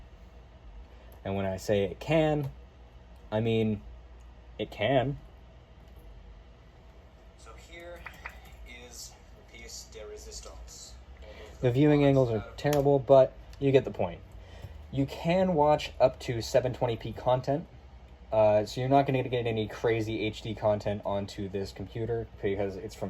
And when I say it can, I mean It can. So here is the piece de resistance. The viewing angles are terrible, but you get the point. You can watch up to 720p content, so you're not going to get any crazy HD content onto this computer because it's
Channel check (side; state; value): both; identical; correlation 1.00